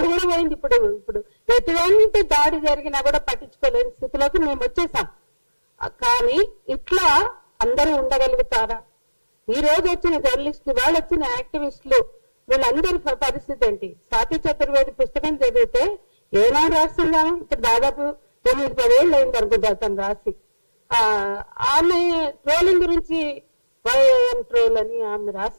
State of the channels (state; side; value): inverted; both; correlation -1.00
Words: కూడా పోయింది. ఇప్పుడు ఎటువంటి దాడి జరిగినా కూడా పట్టించుకోలేని స్థితిలోకి మేము వచ్చేసాం. కానీ ఇట్లా అందరూ ఉండగలుగుతారా? ఈ రోజు వచ్చిన జర్నలిస్టులు, వాళ్ళు వచ్చిన యాక్టివిస్టులు, వీళ్ళందరి పరిస్థితి ఏంటి? స్వాతి చతుర్వేది పుస్తకం చదివితే ఏనాడు రాస్తున్నాను, ఇక్కడ దాదాపు 9-10 ఏళ్ళు అయింది అనుకుంటా తను రాసి. ఆమె ట్రోలింగ్ గురించి వైఎం ట్రోల్ అని ఆమె